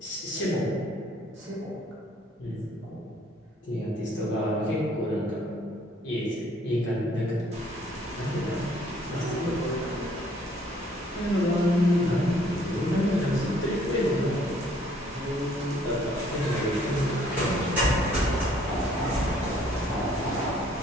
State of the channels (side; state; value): both; normal; correlation 0.62